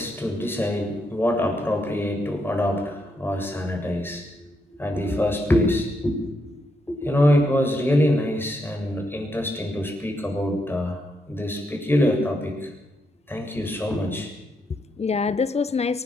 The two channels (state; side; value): normal; both; correlation 0.79